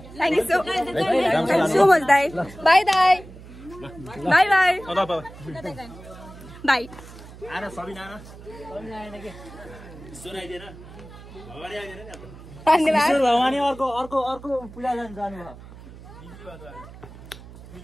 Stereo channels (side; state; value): right; noise; hum, 17 dB below the sound